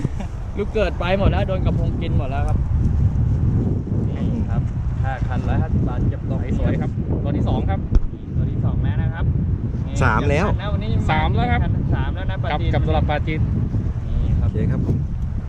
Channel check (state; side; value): identical; both; correlation 1.00